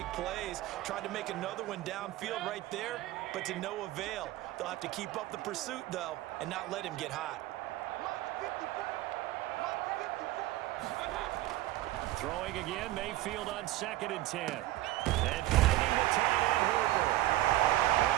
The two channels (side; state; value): left; quieter; 16.3 dB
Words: plays. Tried to make another one downfield right there, but to no avail. They'll have to keep up the pursuit, though, and not let him get hot. Throwing again, Mayfield on 2nd and 10. And finding the tight end, Hooper.